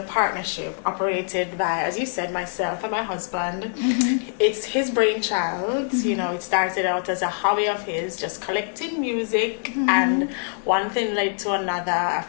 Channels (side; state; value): right; silent; 63 dB below the other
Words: partnership operated by, as you said, myself and my husband. Mm-hmm. It's his brainchild. Mm-hmm. You know, it started out as a hobby of his, just collecting music. Mm-hmm. And one thing led to another. A